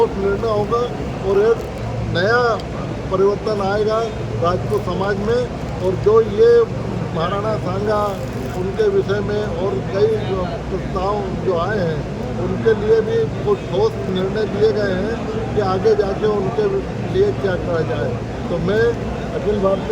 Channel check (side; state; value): both; identical; correlation 1.00